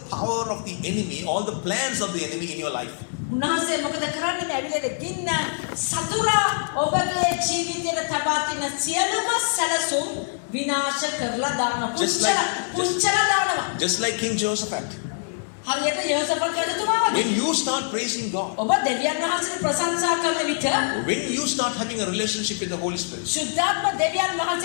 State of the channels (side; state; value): right; silent; digital silence